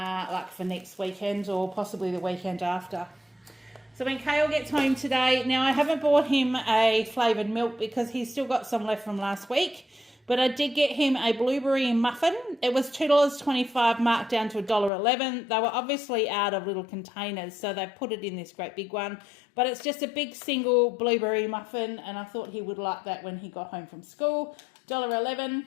for next weekend or possibly the weekend after. So when Kale gets home today, now I haven't bought him a flavoured milk because he's still got some left from last week, but I did get him a blueberry muffin. It was $2.25 marked down to $1.11. They were obviously out of little containers, so they put it in this great big one. But it's just a big single blueberry muffin, and I thought he would like that when he got home from school. $1.11.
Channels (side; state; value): right; drops out; at 14.9 s